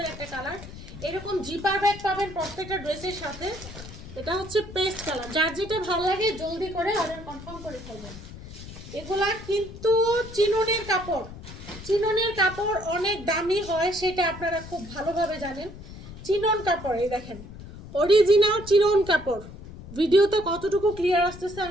একটা কালার। এরকম জিপার ব্যাগ পাবেন প্রত্যেকটা ড্রেসের সাথে। এটা হচ্ছে পেস্ট কালার। যার যেটা ভালো লাগে জলদি করে অর্ডার কনফার্ম করে ফেলবেন। এগুলা কিন্তু চিননের কাপড়, চিননের কাপড় অনেক দামি হয়, সেটা আপনারা খুব ভালোভাবে জানেন। চিনন কাপড়, এই দেখেন অরিজিনাল চিনন কাপড়। ভিডিওতে কতটুকু ক্লিয়ার আসতেছে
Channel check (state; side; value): noise; left; rumble, 14 dB below the sound